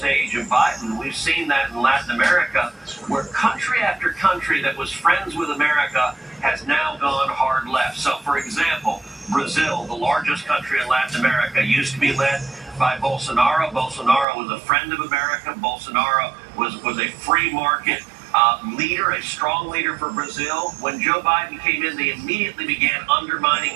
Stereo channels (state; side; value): drops out; left; at 14.2 s